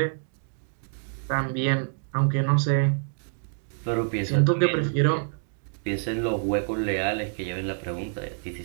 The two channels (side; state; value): left; silent; digital silence